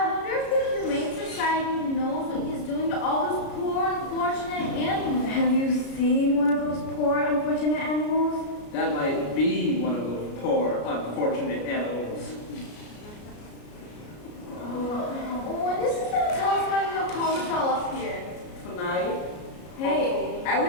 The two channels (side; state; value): right; late; 33 ms